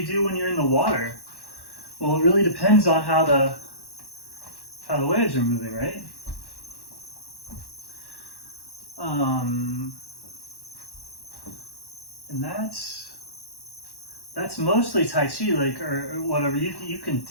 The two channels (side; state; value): right; late; 1.1 ms